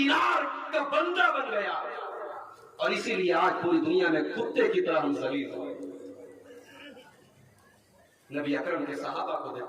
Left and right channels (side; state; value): both; identical; correlation 1.00